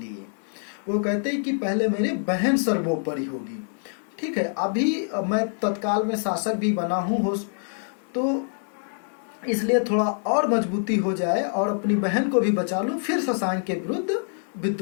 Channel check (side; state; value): right; silent; digital silence